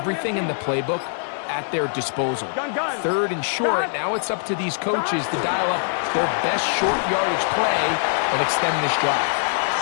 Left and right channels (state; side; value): silent; right; digital silence